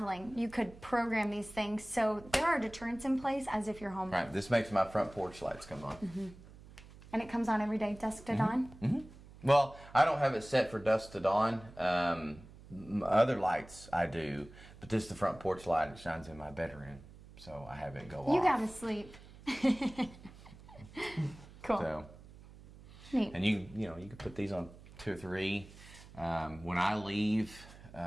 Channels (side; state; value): right; noise; hum, 19 dB below the sound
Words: you could program these things so there are deterrents in place as if you're home. Right. This makes my front porch lights come on. And it comes on every day, dusk to dawn? Well, I don't have it set for dusk to dawn. Other lights I do, but this is the front porch light. It shines in my bedroom, so I have it go off. You gotta sleep. Cool. So, Neat. and you can put these on 2 or 3. When I leave